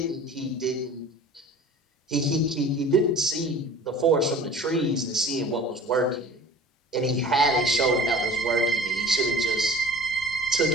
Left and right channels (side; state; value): both; normal; correlation 0.43